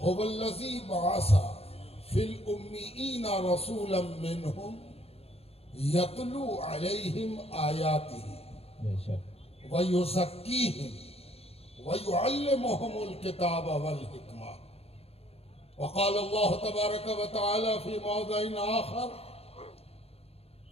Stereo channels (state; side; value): late; right; 0.29 ms